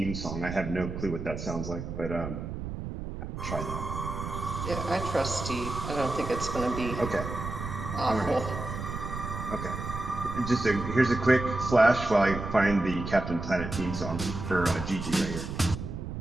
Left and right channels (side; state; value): right; noise; rumble, 6 dB below the sound